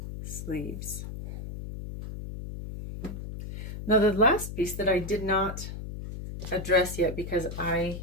sleeves. Now the last piece that I did not address yet, because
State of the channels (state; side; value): noise; left; hum, 8 dB below the sound